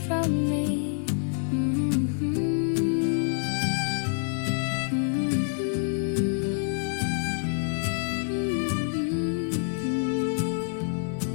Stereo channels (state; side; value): silent; right; 57 dB below the other